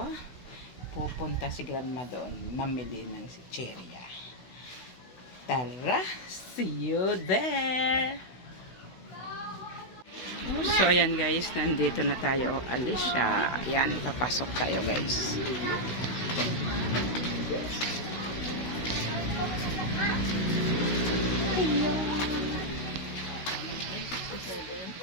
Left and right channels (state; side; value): late; right; 16 ms